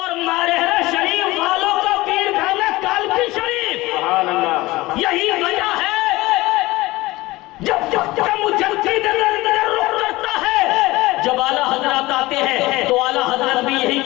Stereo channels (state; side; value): quieter; right; 19.7 dB